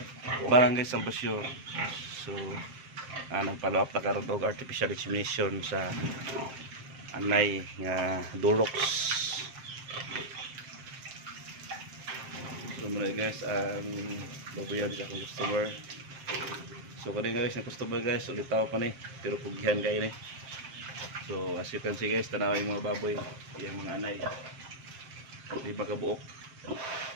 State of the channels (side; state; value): left; late; 7.6 ms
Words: Barangay Salvacion. So, nag-follow up na karoon og artificial insemination sa anay nga Durox. So, muna guys, ang babuyan sa akong customer. So, kanina guys, na customer guys, ulitaw pa ni, pero pugihan kayo ni. So, as you can see guys, tanaw yung mga baboy, yung mga anay. Di ba kabuok?